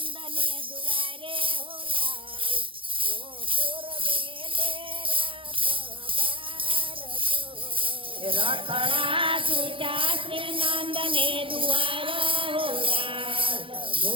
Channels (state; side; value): late; left; 0.25 ms